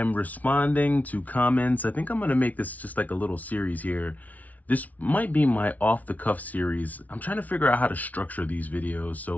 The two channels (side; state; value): right; late; 0.073 ms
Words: responding to comments. I think I'm gonna make this just like a little series here. This might be my off the cuff series. I'm trying to figure out how to structure these videos,